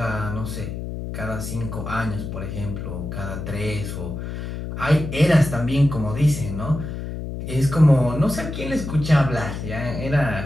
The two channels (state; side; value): noise; left; hum, 6 dB below the sound